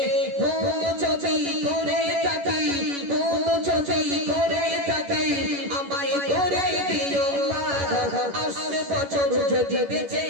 ভুল যদি করে থাকি, ভুল যদি করে থাকি আমায় করে দিও মা। আসবে বছর যদি বেঁচে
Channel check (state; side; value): late; left; 11 ms